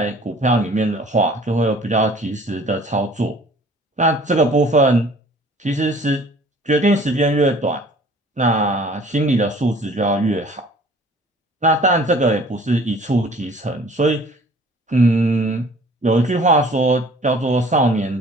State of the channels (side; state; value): both; normal; correlation 0.51